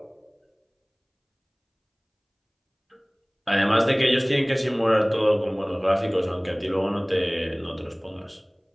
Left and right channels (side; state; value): both; identical; correlation 1.00